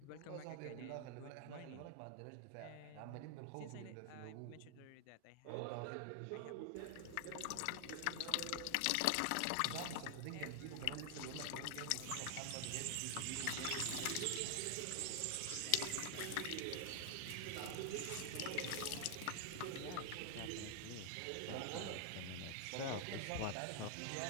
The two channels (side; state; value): both; different; correlation 0.00